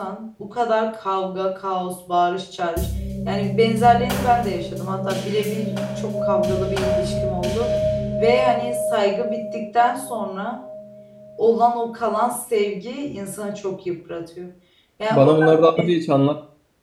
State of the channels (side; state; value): both; identical; correlation 1.00